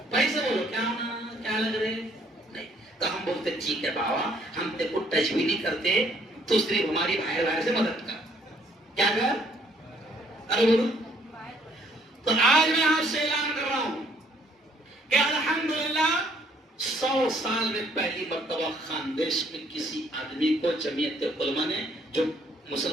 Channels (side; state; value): both; normal; correlation 0.64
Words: پیسے بولو کیا ہونا، کیا لگ رہے نہیں، تو ہم بولتے ٹھیک ہے بابا ہم تیرے کو ٹچ بھی نہیں کرتے، تو صرف ہماری باہر سے مدد کر، کیا کر؟ ارے بولو، تو آج میں آپ سے اعلان کر رہا ہوں کہ الحمدللہ 100 سال میں پہلی مرتبہ خاندیش میں کسی آدمی کو جمعیت علماء نے، جو